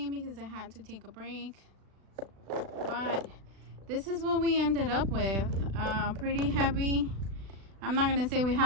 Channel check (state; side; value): late; left; 36 ms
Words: because I had to take a break, but this is what we ended up with. Pretty heavy. I'm not gonna say we